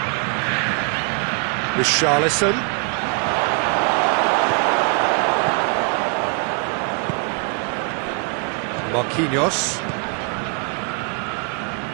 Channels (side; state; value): left; quieter; 38.5 dB